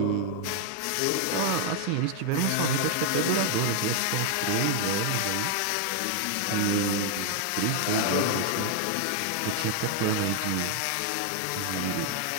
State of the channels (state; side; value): different; both; correlation 0.00